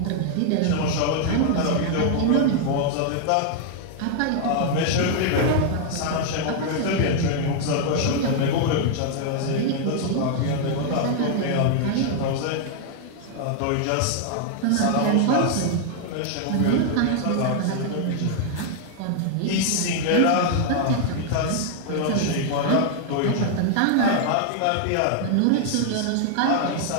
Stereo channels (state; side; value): different; both; correlation 0.00